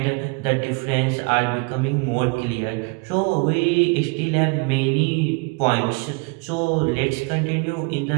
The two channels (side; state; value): left; quieter; 31.4 dB